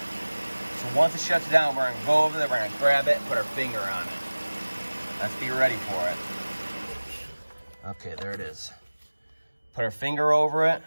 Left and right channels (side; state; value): both; inverted; correlation -1.00